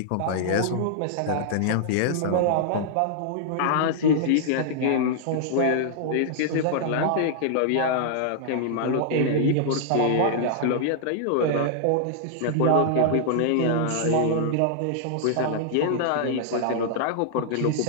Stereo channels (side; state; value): both; different; correlation -0.01